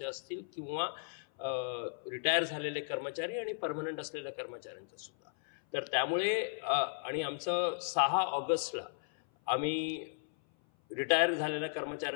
असतील किंवा रिटायर झालेले कर्मचारी आणि परमनंट असलेल्या कर्मचाऱ्यांचं सुद्धा. तर त्यामुळे आणि आमचं 6 ऑगस्टला आम्ही रिटायर झालेल्या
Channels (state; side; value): silent; right; 54 dB below the other